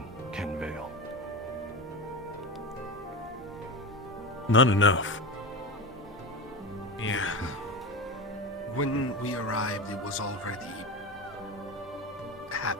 Kenvale? Not enough. Yeah. When we arrived, it was already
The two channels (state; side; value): normal; both; correlation 0.22